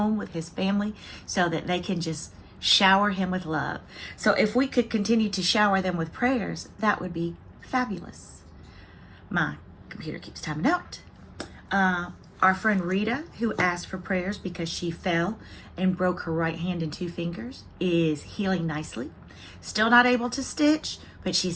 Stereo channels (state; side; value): identical; both; correlation 1.00